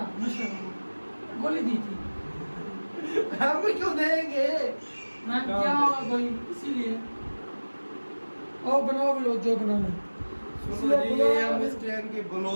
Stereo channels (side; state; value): both; inverted; correlation -1.00